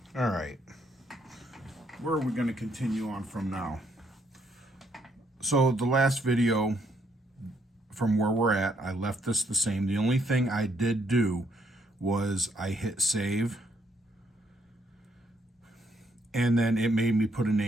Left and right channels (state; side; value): normal; both; correlation 0.72